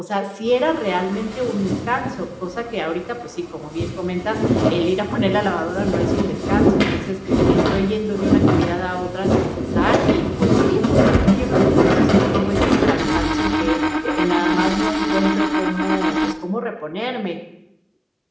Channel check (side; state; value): both; identical; correlation 1.00